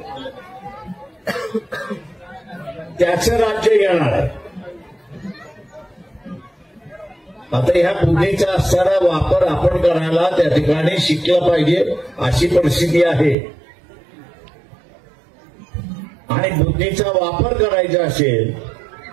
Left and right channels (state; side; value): drops out; left; at 13.4 s